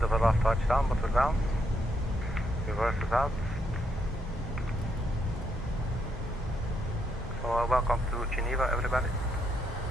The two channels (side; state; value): both; normal; correlation 0.77